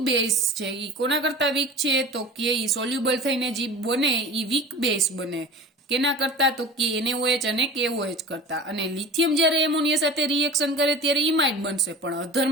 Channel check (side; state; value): both; normal; correlation 0.37